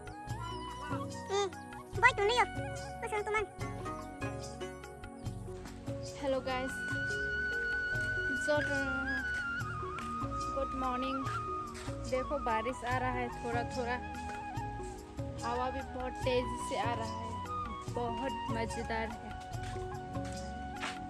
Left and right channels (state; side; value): identical; both; correlation 1.00